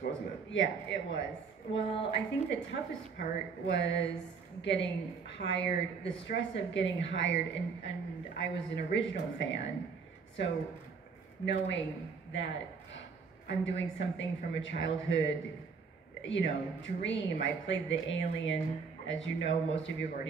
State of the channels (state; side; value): quieter; left; 5.4 dB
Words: wasn't it? Yeah, it was. Well, I think the toughest part was getting hired, the stress of getting hired, and I was an original fan, so knowing that I'm doing something from a childhood, dream. I played the alien, as you know, most of you